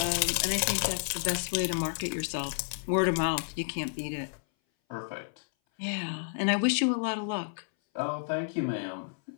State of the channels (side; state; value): right; silent; 57 dB below the other